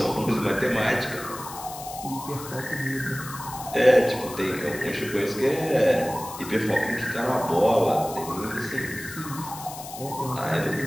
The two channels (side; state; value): left; noise; hiss, 13 dB below the sound